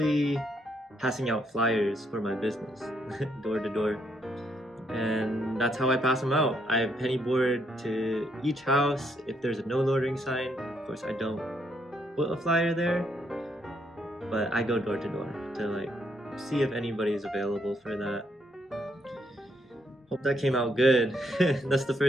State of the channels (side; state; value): both; normal; correlation 0.74